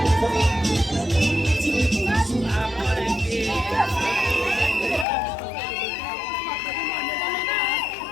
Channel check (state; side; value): drops out; right; at 5.1 s